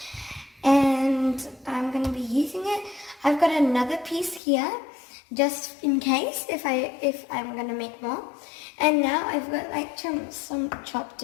and I'm going to be using it. I've got another piece here just in case if I'm going to make more. And now I've got like some chopped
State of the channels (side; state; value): right; drops out; at 4.4 s